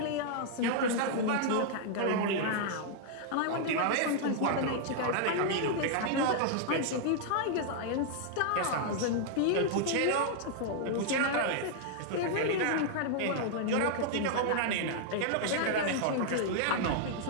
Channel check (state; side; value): different; both; correlation -0.01